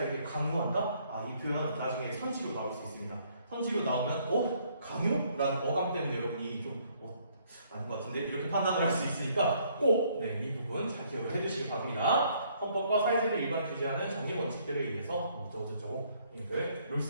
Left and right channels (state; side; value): inverted; both; correlation -0.66